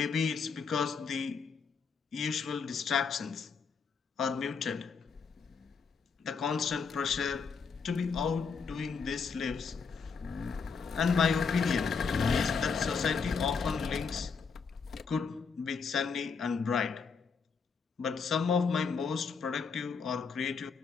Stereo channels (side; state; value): right; quieter; 5.5 dB